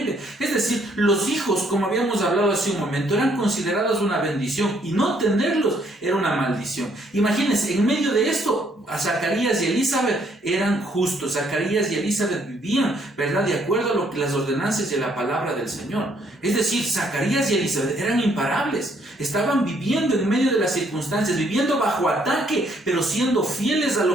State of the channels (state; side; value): normal; both; correlation 0.68